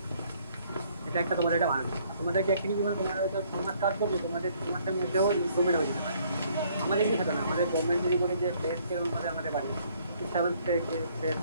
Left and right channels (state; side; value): inverted; both; correlation -0.64